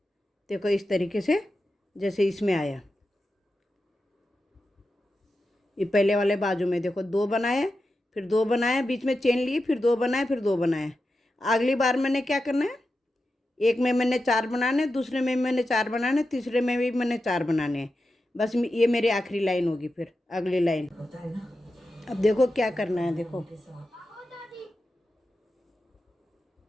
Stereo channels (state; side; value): normal; both; correlation 0.90